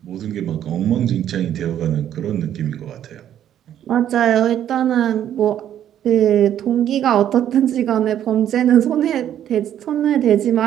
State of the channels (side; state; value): left; quieter; 10.6 dB